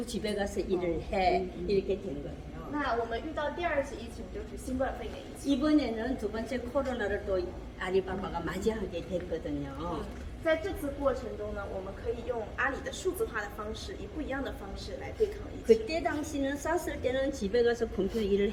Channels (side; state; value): both; identical; correlation 1.00